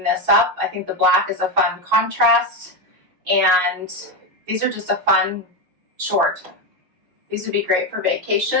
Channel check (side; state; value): left; late; 6.2 ms